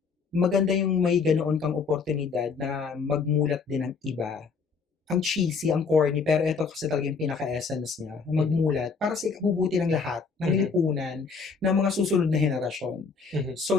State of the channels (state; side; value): quieter; right; 5.1 dB